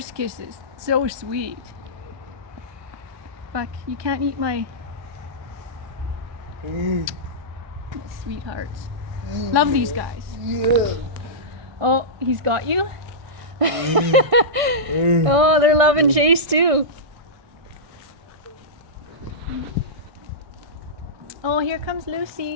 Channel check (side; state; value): left; late; 1.6 ms